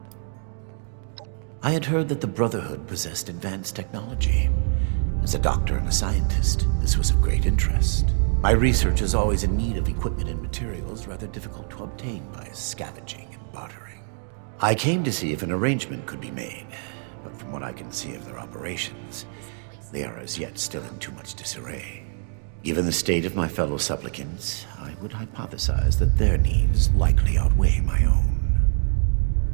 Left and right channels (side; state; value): left; silent; 56 dB below the other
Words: I had heard that the Brotherhood possessed advanced technology. As a doctor and a scientist, this was of great interest. My research is always in need of equipment and materials rather difficult to obtain by scavenging and bartering. I came to see if an arrangement could be made, but from what I can see of their operations, they are as yet still in too much disarray. Given the state of my fellow supplicants, I would hypothesize that their needs likely outweigh my own.